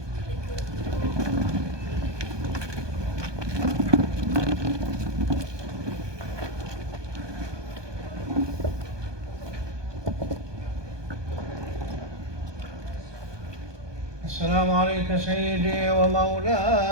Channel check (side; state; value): left; late; 1.2 ms